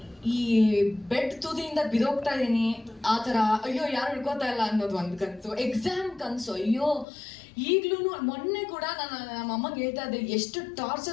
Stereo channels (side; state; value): right; drops out; at 7.1 s